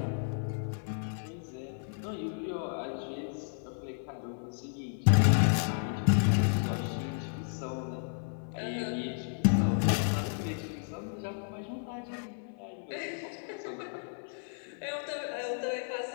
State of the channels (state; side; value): silent; right; 56 dB below the other